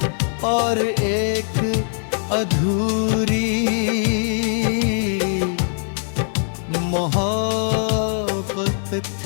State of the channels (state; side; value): silent; right; digital silence